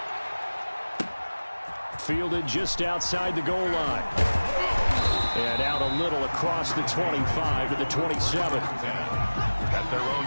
Fielded just outside the goal line. And out a little across the 25 to the 27. At their own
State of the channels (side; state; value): both; inverted; correlation -1.00